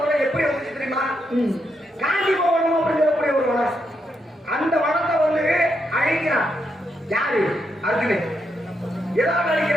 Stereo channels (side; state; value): both; normal; correlation 0.81